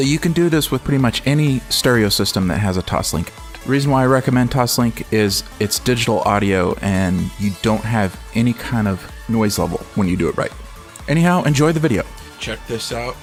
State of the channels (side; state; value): both; identical; correlation 1.00